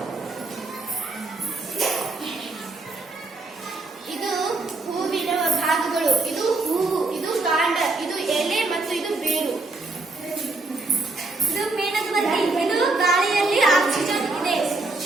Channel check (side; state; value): left; quieter; 3.3 dB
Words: ಇದು ಹೂವಿನ ಭಾಗಗಳು. ಇದು ಹೂವು. ಇದು ಕಾಂಡ. ಇದು ಎಲೆ ಮತ್ತು ಇದು ಬೇರು. ಇದು ಮೇಣದಬತ್ತಿ. ಇದು ಗಾಳಿಯಲ್ಲಿ ಆಕ್ಸಿಜನ್ ಇದೆ.